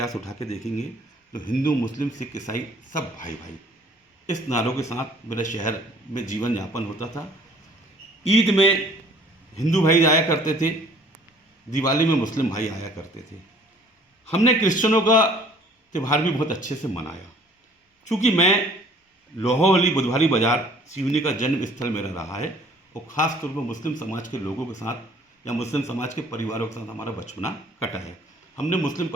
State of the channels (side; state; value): both; normal; correlation 0.55